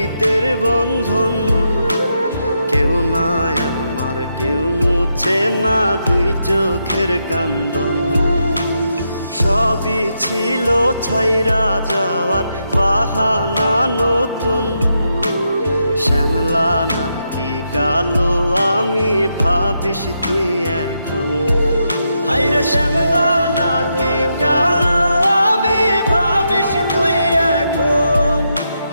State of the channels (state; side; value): inverted; both; correlation -0.83